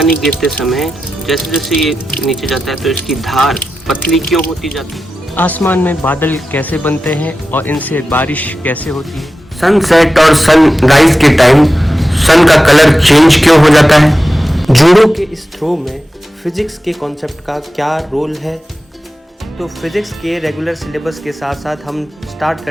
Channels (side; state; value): both; normal; correlation 0.92